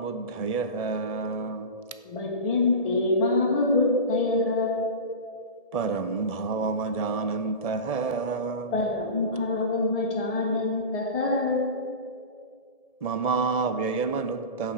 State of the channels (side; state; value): right; late; 1.7 ms